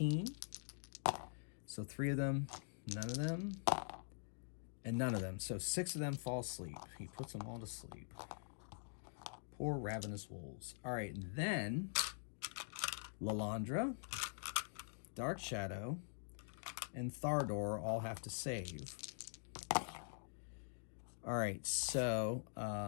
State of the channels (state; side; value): silent; right; digital silence